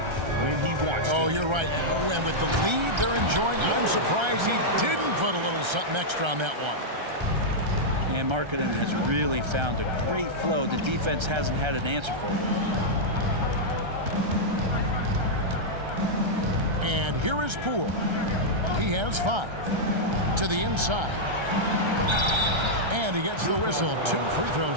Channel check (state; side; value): late; left; 1.3 ms